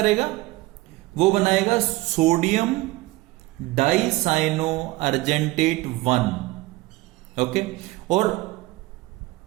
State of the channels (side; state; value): left; quieter; 19.9 dB